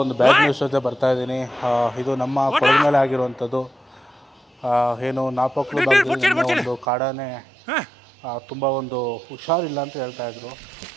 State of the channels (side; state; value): left; drops out; at 6.9 s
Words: ಒಂದು ಬ್ಯಾಡ್ ನ್ಯೂಸ್ ಜೊತೆ ಬರ್ತಾ ಇದ್ದೀನಿ. ಇದು ನಮ್ಮ ಕೊಡದ ಮೇಲೆ ಆಗಿರುವಂಥದ್ದು. ಏನು ನಾಪಕ್ಲು ಭಾಗದಲ್ಲಿ ಒಂದು ಕಾಡಾನೆ ತುಂಬ ಒಂದು ಹುಷಾರಿಲ್ಲ ಅಂತ ಹೇಳ್ತಾಯಿದ್ರು.